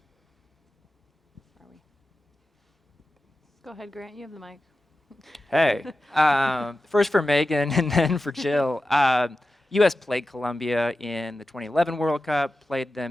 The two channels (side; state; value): both; normal; correlation 0.93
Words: Where are we? Go ahead, Grant. You have the mic. Hey, first for Megan and then for Jill. U.S. played Colombia in the 2011 World Cup, played them